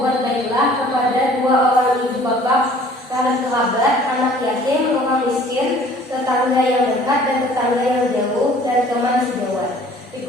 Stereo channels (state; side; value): normal; both; correlation 0.52